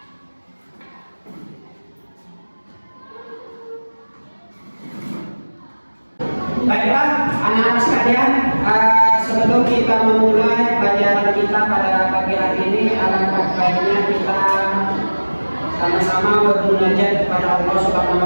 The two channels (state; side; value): inverted; both; correlation -1.00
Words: Baiklah, anak-anak sekalian, sebelum kita memulai pelajaran kita pada pagi hari ini, alangkah baiknya kita sama-sama bermunajat kepada Allah Subhanahu